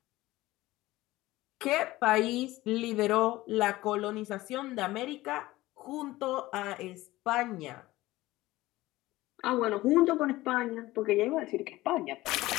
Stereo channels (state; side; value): quieter; right; 17.9 dB